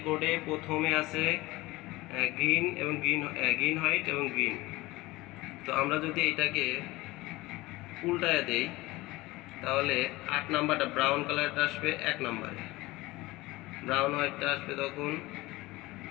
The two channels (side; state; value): right; quieter; 20.1 dB